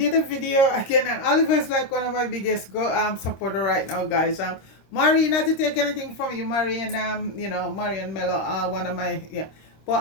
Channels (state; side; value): late; right; 26 ms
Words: a video again, and Oliver is like one of my biggest supporter right now, guys. Marie, not to take anything from you, Marie, and Marie and Mello, one of my, yeah.